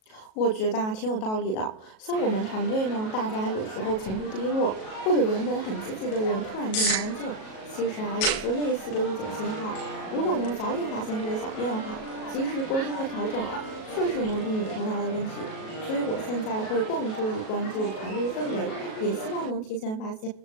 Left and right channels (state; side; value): late; right; 37 ms